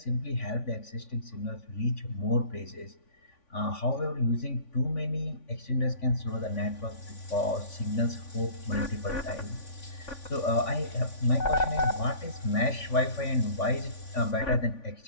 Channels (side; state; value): right; late; 3.5 ms